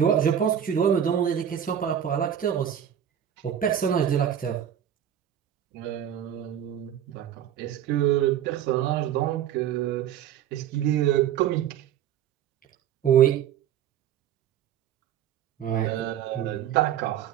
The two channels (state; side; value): quieter; left; 9.9 dB